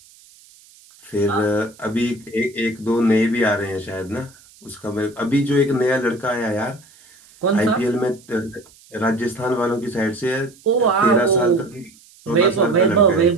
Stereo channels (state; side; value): noise; right; hiss, 26 dB below the sound